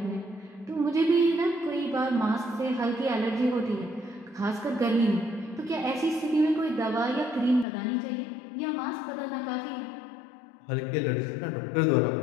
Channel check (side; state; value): right; drops out; at 7.7 s